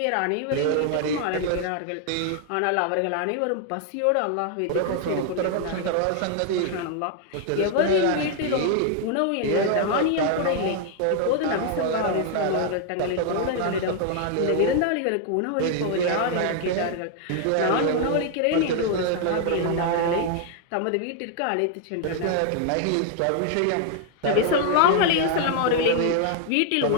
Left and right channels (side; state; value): both; different; correlation 0.00